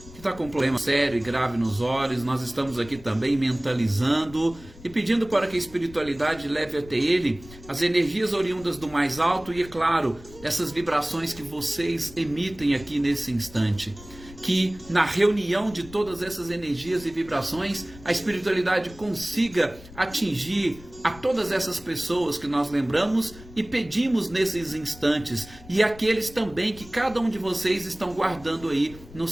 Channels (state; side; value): noise; left; rumble, 19 dB below the sound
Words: que está com um problema sério e grave nos olhos. Nós estamos aqui também mentalizando e pedindo para que a espiritualidade leve até ele as energias oriundas do mais alto e, é claro, essas vibrações que vocês emitem aqui nesse instante. que na reunião de todas essas energias e vibrações, a espiritualidade consiga atingir a todas essas pessoas que nós lembramos e pedimos nesses instantes, e aqueles também que cada um de vocês estão guardando aí nos